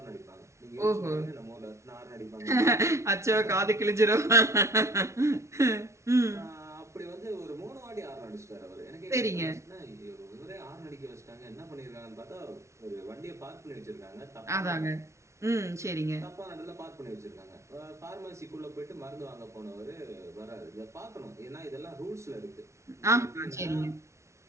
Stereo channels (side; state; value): left; late; 0.14 ms